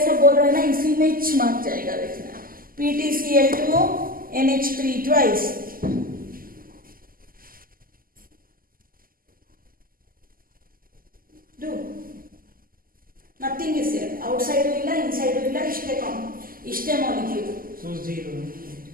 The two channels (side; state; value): left; late; 0.42 ms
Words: सब बोल रहा है ना, इसी में चमक जाएगा देखना. PTCl2 NH3 twice. Do. Nothing is there. Outside illa, inside illa, ishte molecule. So 0.